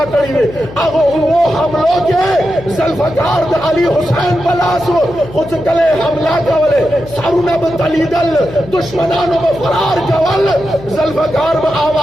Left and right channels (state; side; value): noise; left; hum, 16 dB below the sound